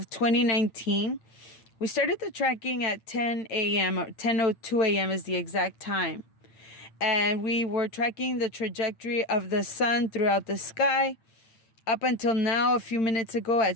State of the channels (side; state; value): right; late; 8.9 ms